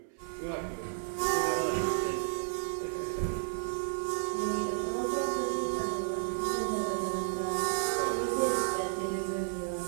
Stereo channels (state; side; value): silent; left; digital silence